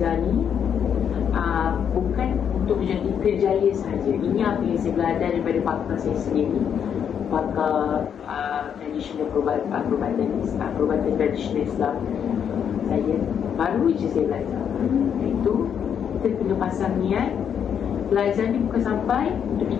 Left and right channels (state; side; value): quieter; right; 8.1 dB